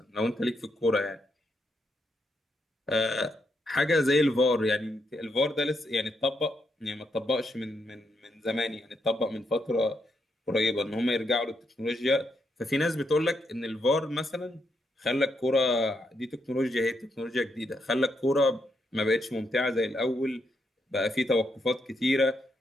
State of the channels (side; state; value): both; normal; correlation 0.79